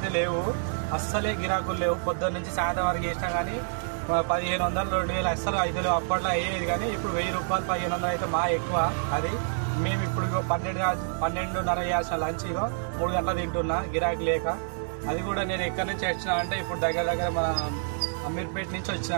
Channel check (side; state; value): left; silent; digital silence